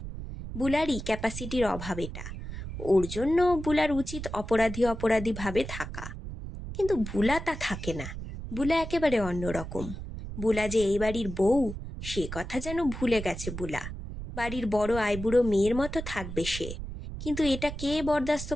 বুলারই ক্যাপাসিটির অভাব এটা, ওর জন্য বুলার উচিত অপরাধী অপরাধী ভাবে থাকা। কিন্তু বুলা তা থাকে না, বুলা একেবারে অন্যরকম। বুলা যে এই বাড়ির বউ, সে কথা যেন ভুলে গেছে বুলা। বাড়ির বড় আইবুড়ো মেয়ের মতো থাকবে সে, কিন্তু এটা কে বরদাস্ত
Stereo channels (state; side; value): noise; right; rumble, 8 dB below the sound